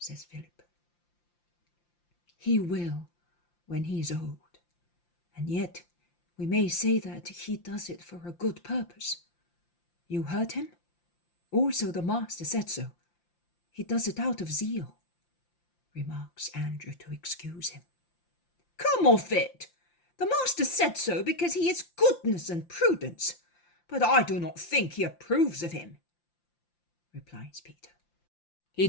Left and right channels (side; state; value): right; late; 5.8 ms